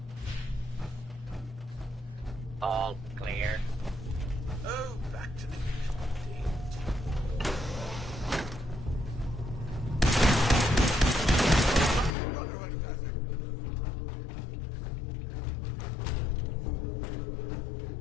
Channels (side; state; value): right; drops out; at 12.1 s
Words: All clear. Oh, back to the usual date. Brotherhood does it.